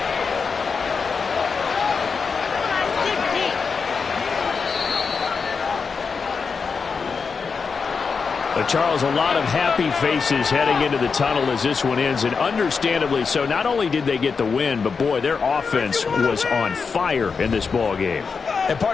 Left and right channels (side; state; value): right; quieter; 5.3 dB